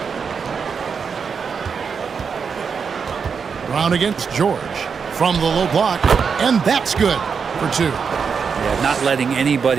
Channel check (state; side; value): quieter; left; 6.0 dB